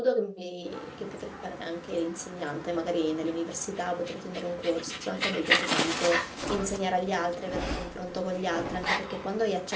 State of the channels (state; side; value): identical; both; correlation 1.00